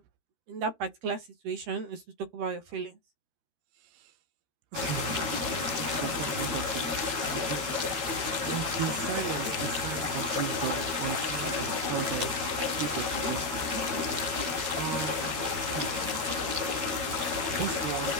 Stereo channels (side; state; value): left; late; 13 ms